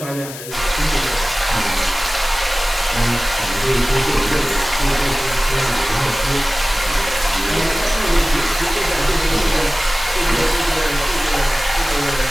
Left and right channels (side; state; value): left; noise; hiss, 12 dB below the sound